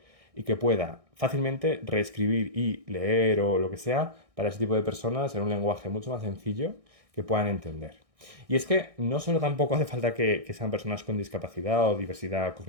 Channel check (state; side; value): late; left; 1.6 ms